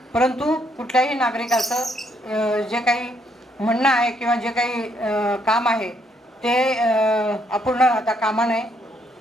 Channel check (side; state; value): both; normal; correlation 0.72